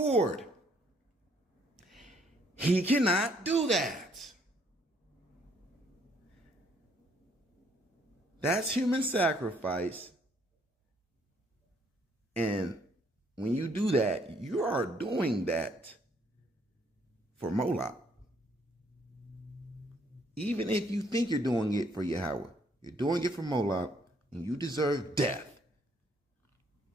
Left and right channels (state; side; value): normal; both; correlation 0.66